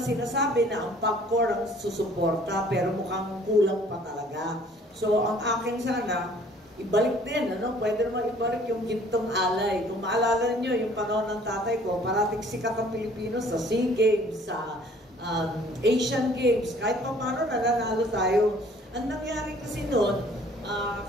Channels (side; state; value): both; normal; correlation 0.55